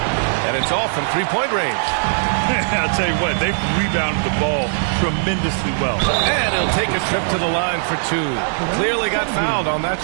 And it's all from 3-point range. I'll tell you what, they've rebounded the ball tremendously well. And he'll take a trip to the line for 2. Clearly got fouled on that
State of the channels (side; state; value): left; silent; 66 dB below the other